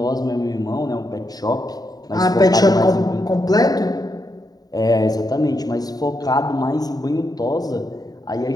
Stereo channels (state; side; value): late; right; 0.18 ms